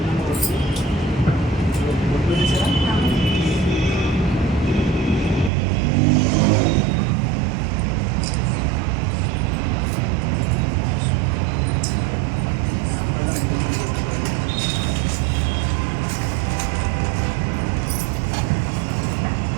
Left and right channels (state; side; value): drops out; left; at 5.5 s